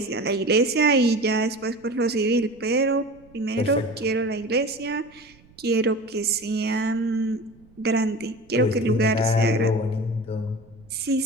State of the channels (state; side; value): noise; right; rumble, 28 dB below the sound